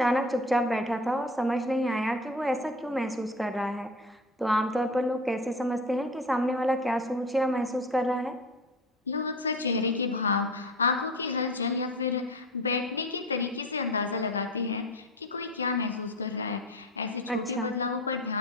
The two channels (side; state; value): both; normal; correlation 0.32